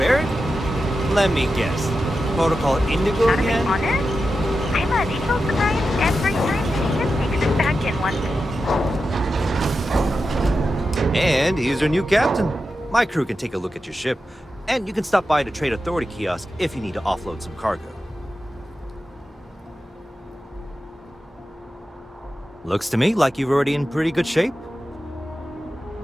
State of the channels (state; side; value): normal; both; correlation 0.91